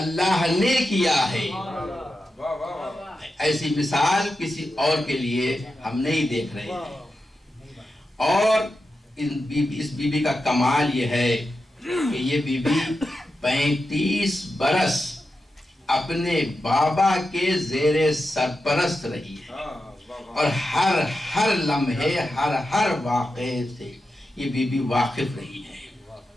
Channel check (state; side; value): normal; both; correlation 0.90